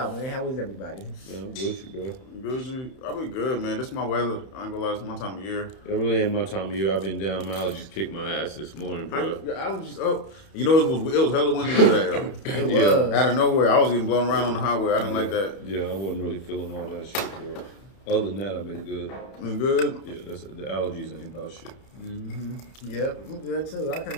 man? How is everybody? Man, good, bro. Good, I've been good, man. This is my weather. I ain't gonna lie, this is my time of year. It really ain't my time of year. I've been down. My allergies kicked my ass this morning, bro. I was just up. You know, it was hella windy today, though. It was. Out of nowhere, I was getting blown around on the highway. I didn't like that. Yeah, I wasn't really feeling all that shit, bro. Other than that, I've been good. You good? Yeah, the allergies ain't about shit. Yep, I'm good too. I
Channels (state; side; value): late; right; 31 ms